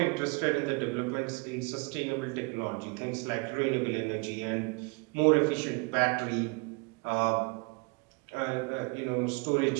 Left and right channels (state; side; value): quieter; left; 31.1 dB